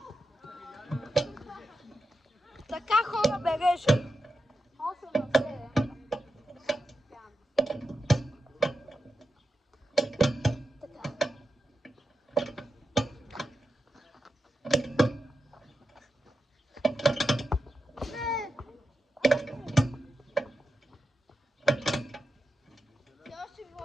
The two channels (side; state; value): both; normal; correlation 0.89